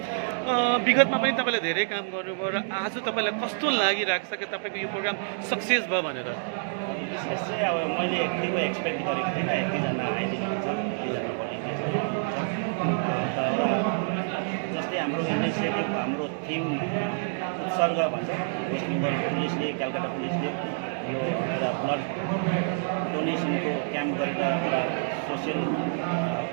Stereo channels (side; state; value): left; silent; digital silence